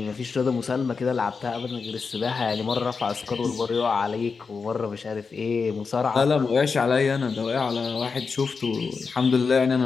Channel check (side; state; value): right; quieter; 5.0 dB